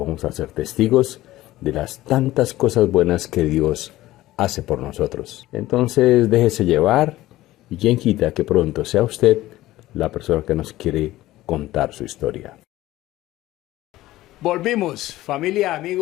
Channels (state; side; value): quieter; right; 16.3 dB